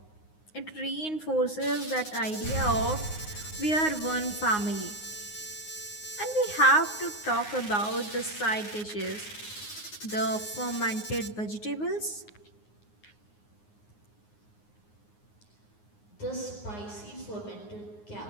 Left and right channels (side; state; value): right; late; 9.6 ms